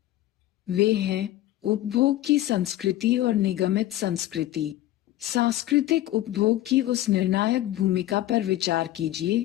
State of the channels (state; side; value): quieter; right; 14.6 dB